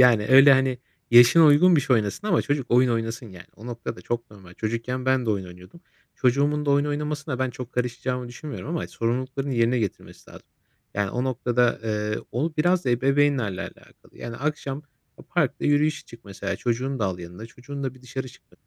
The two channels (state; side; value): identical; both; correlation 1.00